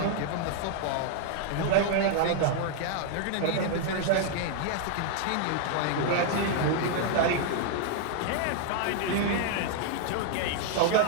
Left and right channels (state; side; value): different; both; correlation -0.01